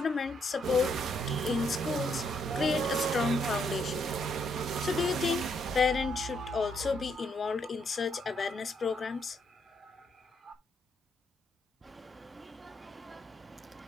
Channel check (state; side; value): normal; both; correlation 0.74